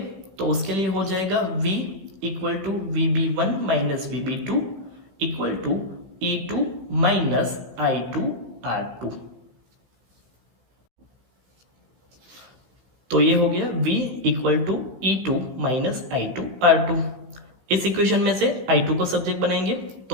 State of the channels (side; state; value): left; late; 16 ms